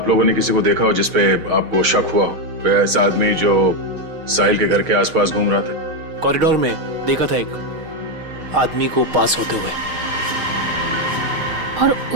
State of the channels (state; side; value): late; left; 6.4 ms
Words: लोगों ने किसी को देखा हो जिसपे आपको शक हुआ हो? कोई ऐसा आदमी जो साहिल के घर के आसपास घूम रहा था? कॉरिडोर में देखा था एक आदमी को पास होते हुए। और